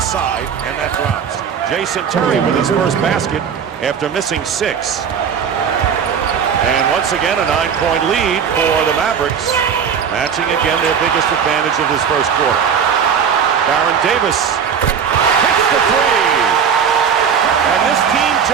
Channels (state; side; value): quieter; left; 7.2 dB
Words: and that drops. Jason Terry with his first basket after missing 6. And once again, a 9-point lead for the Mavericks, matching again their biggest advantage of this first quarter. Baron Davis hits the 3. And this team